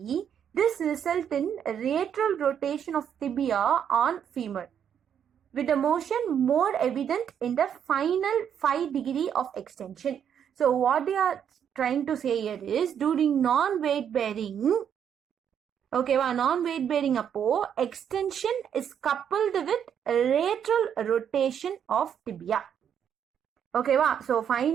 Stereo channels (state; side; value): quieter; left; 8.6 dB